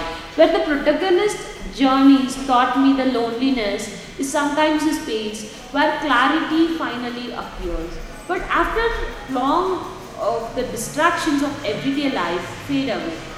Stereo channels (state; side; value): identical; both; correlation 1.00